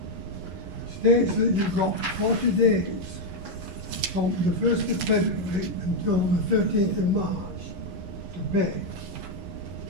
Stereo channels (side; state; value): left; late; 11 ms